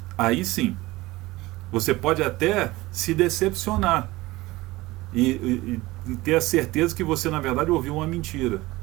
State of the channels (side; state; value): left; quieter; 19.6 dB